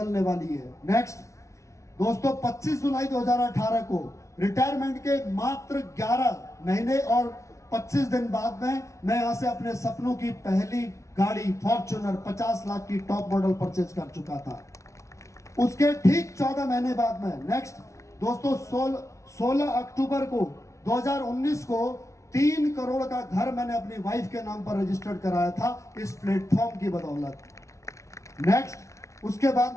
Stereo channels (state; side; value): late; right; 0.14 ms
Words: वाली है। नेक्स्ट दोस्तों, 25 जुलाई 2018 को रिटायरमेंट के मात्र 11 महीने और 25 दिन बाद में मैं यहाँ से अपने सपनों की पहली गाड़ी फॉर्च्यूनर 50 लाख की टॉप मॉडल परचेज कर चुका था। उसके ठीक 14 महीने बाद में नेक्स्ट दोस्तों 16 अक्टूबर को 2019 को 3 करोड़ का घर मैंने अपनी वाइफ के नाम पर रजिस्टर्ड कराया था, इस प्लेटफॉर्म की बदौलत। नेक्स्ट उसके बाद